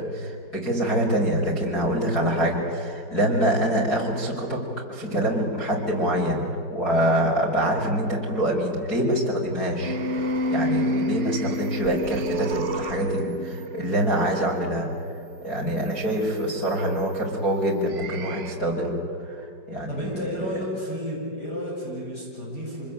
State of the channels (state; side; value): late; right; 4.7 ms